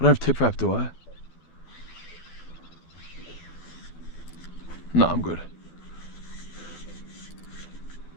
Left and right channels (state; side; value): late; right; 12 ms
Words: have tip wrap, do I? No, I'm good.